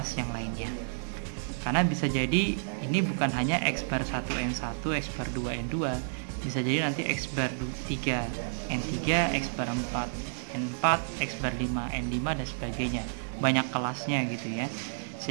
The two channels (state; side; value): silent; left; digital silence